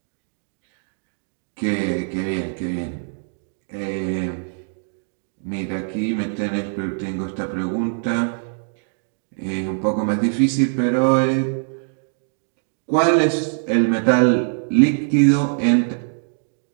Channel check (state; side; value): silent; left; digital silence